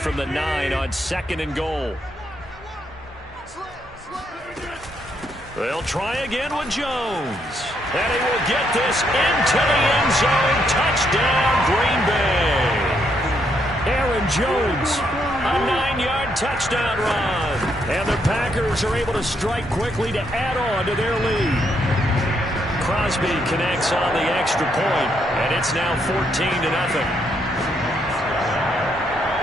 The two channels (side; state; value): both; normal; correlation 0.75